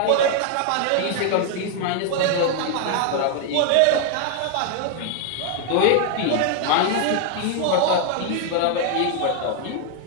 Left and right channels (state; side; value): different; both; correlation 0.00